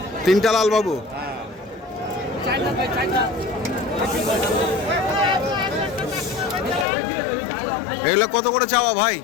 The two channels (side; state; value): right; drops out; at 6.9 s